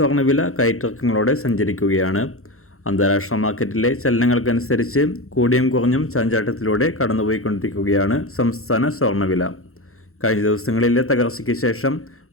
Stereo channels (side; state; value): right; late; 0.63 ms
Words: കയറ്റിറക്കങ്ങളോടെ സഞ്ചരിക്കുകയാണ്. അന്താരാഷ്ട്ര മാർക്കറ്റിലെ ചലനങ്ങൾക്കനുസരിച്ച് കൂടിയും കുറഞ്ഞും ചാഞ്ചാട്ടത്തിലൂടെ കടന്നുപോയിക്കൊണ്ടിരിക്കുകയാണ് സംസ്ഥാന സ്വർണ്ണവില. കഴിഞ്ഞ ദിവസങ്ങളിലെ തകർച്ചയ്ക്ക് ശേഷം